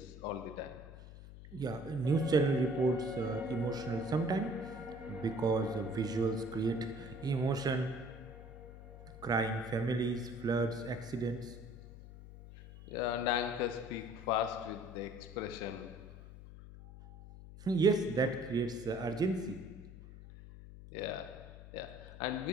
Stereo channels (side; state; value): left; noise; hum, 15 dB below the sound